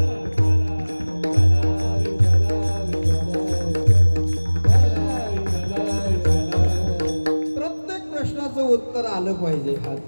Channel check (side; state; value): both; inverted; correlation -1.00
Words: उत्तर आलं पाहिजे.